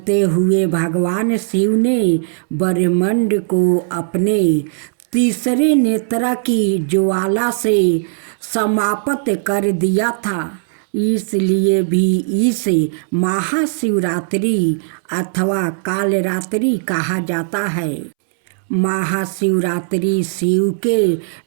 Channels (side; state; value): left; silent; 68 dB below the other